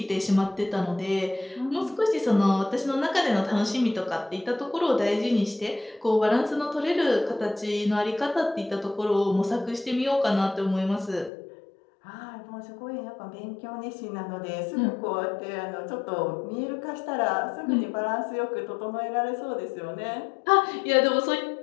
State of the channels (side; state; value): right; drops out; at 11.3 s